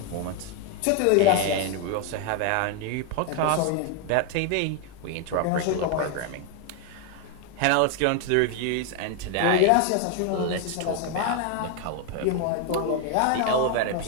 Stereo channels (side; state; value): both; different; correlation 0.01